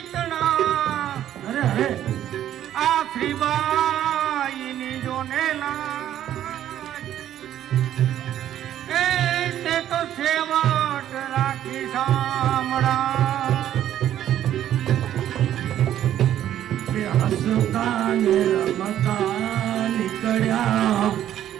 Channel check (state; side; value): quieter; left; 11.5 dB